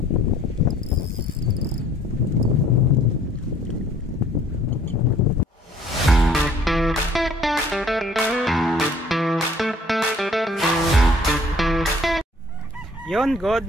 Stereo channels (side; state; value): both; normal; correlation 0.57